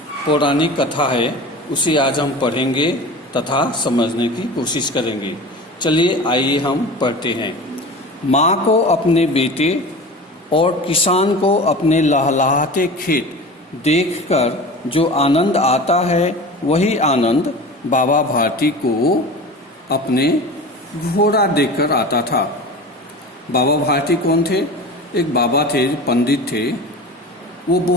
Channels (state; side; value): normal; both; correlation 0.34